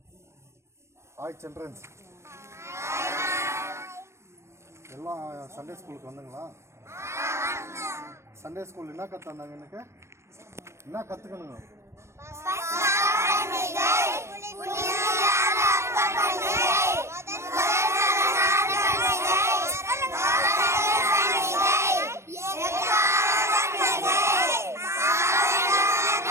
ஹாய் சில்ட்ரன்ஸ், எல்லாம் சண்டே ஸ்கூலுக்கு வந்தீங்களா? சண்டே ஸ்கூல் என்ன கற்றுந்தாங்க? எனக்கு என்ன கற்றுக்கணுங்க?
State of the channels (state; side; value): late; left; 0.13 ms